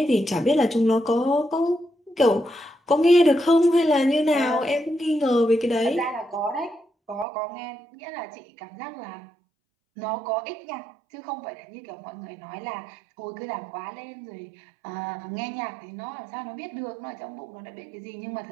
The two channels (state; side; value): drops out; left; at 7.2 s